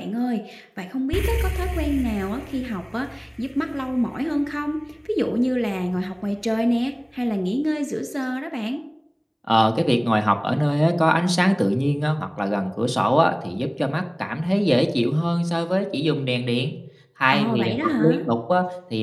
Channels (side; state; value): both; identical; correlation 1.00